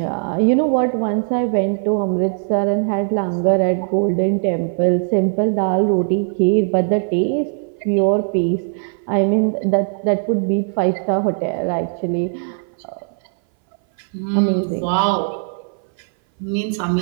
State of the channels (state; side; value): silent; left; 60 dB below the other